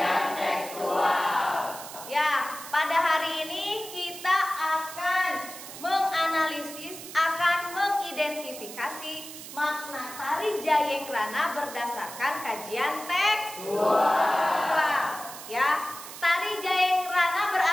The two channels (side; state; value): right; noise; hiss, 12 dB below the sound